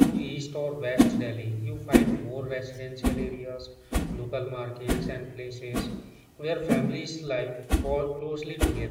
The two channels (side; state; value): both; identical; correlation 1.00